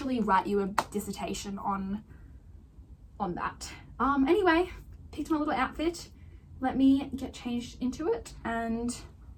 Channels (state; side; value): identical; both; correlation 1.00